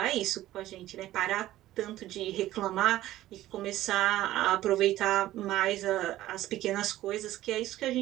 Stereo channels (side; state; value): left; quieter; 14.8 dB